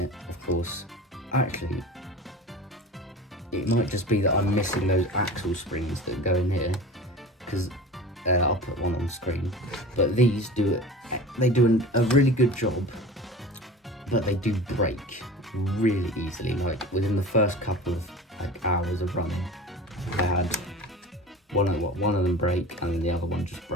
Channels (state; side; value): normal; both; correlation 0.36